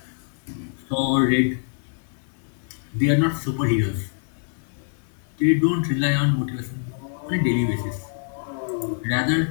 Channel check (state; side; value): silent; right; digital silence